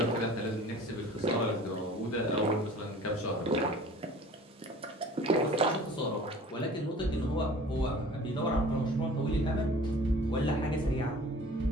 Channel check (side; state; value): both; normal; correlation 0.46